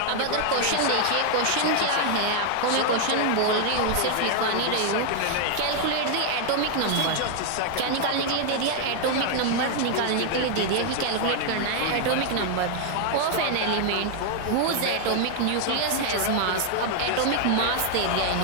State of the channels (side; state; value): both; different; correlation 0.00